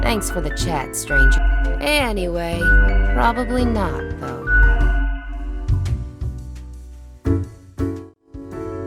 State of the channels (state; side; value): identical; both; correlation 1.00